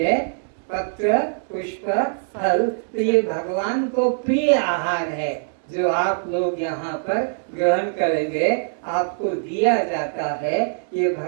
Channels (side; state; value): left; silent; digital silence